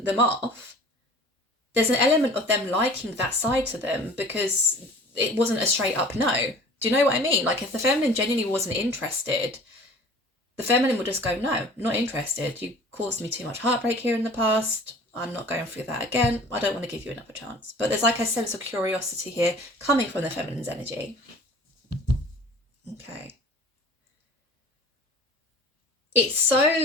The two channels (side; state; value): both; normal; correlation 0.46